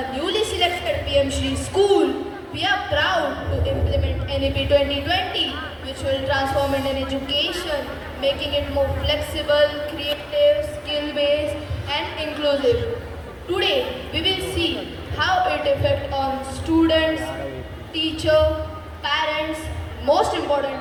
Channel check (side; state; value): both; identical; correlation 1.00